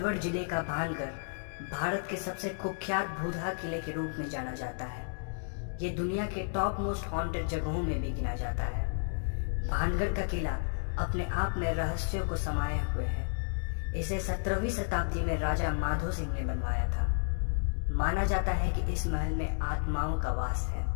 जिले का भानगढ़ भारत के सबसे कुख्यात भूतहा किले के रूप में जाना जाता है। ये दुनिया के टॉप मोस्ट हॉन्टेड जगहों में भी गिना जाता है। भानगढ़ का किला अपने आप में रहस्यों को समाये हुए है। इसे 17वीं शताब्दी में राजा माधो सिंह ने बनवाया था। माना जाता है कि इस महल में आत्माओं का वास है।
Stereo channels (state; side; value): silent; right; digital silence